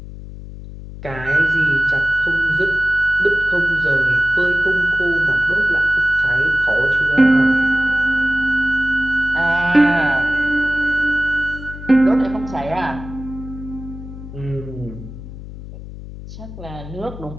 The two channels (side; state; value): left; noise; hum, 13 dB below the sound